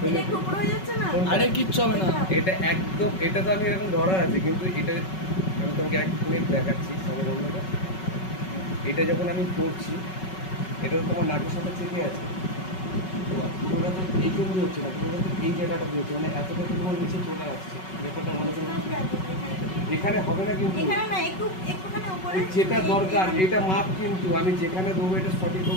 এটা টুকরো হয়ে যাচ্ছে না? আরে কিচ্ছু হবে না। এটা একদম, এটা তো আমি এরকম ধরা আছে, কিন্তু এটা আমি তোমাকে 1 মিনিট দেখাচ্ছি সামনে বন্ধুটা। এটা যখন আমি করছি, এটা তো তোমার নাকের সাথে চেপে আছে, পুরোটা তো এইটুকু হচ্ছে না, পুরোটা তো এই জায়গাটা দিয়ে হচ্ছে, মানে এতটা তো তোমার নিচে চলে আসছে। ব্যাপারটা ভালো করে এখানে হবে না, কিন্তু যেটা দরকার এটা মাপ, কিন্তু আমি যেখানে দেবো এটা সঠিক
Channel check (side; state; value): right; late; 5.3 ms